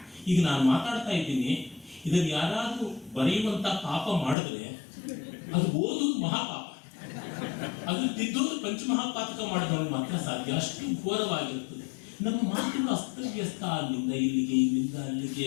ಈಗ ನಾನು ಮಾತಾಡ್ತಾ ಇದ್ದೀನಿ, ಇದನ್ನು ಯಾರಾದ್ರೂ ಬರೆಯುವಂತ ಪಾಪ ಮಾಡಿದ್ರೆ ಅದು ಓದುವುದು ಮಹಾಪಾಪ, ಅದು ತಿದ್ದೋದು ಪಂಚಮಹಾಪಾತಕ ಮಾಡಿದವನು ಮಾತ್ರ ಸಾಧ್ಯ. ಅಷ್ಟು ಘೋರವಾಗಿರ್ತದೆ ನಮ್ಮ ಮಾತುಗಳು, ಅಸ್ತವ್ಯಸ್ತ. ಅಲ್ಲಿಂದ ಇಲ್ಲಿಗೆ, ಇಲ್ಲಿಂದ ಅಲ್ಲಿಗೆ,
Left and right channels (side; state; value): right; drops out; at 4.4 s